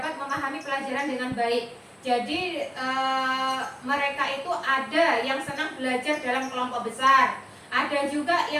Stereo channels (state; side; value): identical; both; correlation 1.00